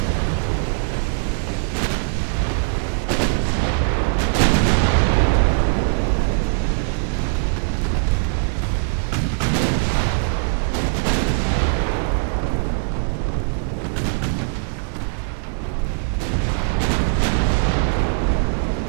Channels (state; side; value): silent; left; digital silence